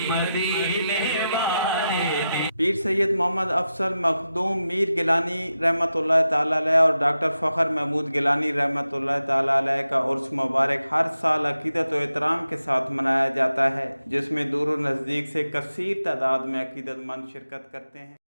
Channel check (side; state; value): both; inverted; correlation -0.90